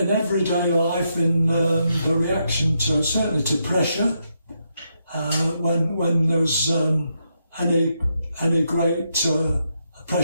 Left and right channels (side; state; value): both; inverted; correlation -0.81